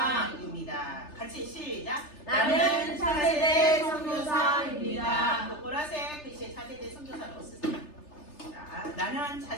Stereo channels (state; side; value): late; right; 3.3 ms